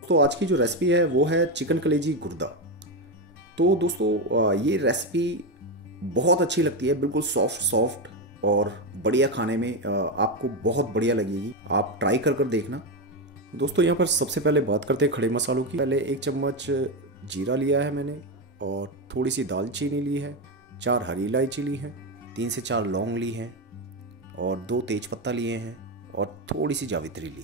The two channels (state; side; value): normal; both; correlation 0.10